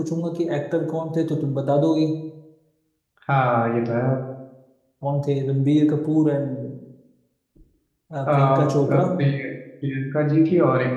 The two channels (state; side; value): identical; both; correlation 1.00